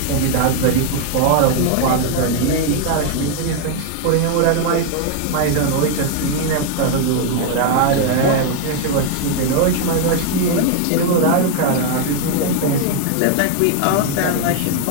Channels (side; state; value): both; different; correlation 0.00